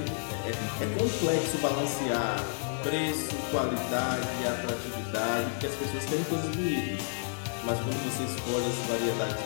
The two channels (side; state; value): right; silent; digital silence